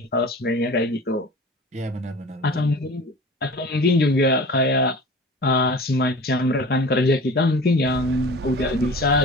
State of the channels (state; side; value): normal; both; correlation 0.39